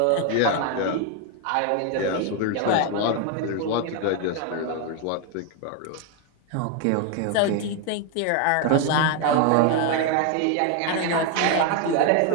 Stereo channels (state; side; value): different; both; correlation 0.01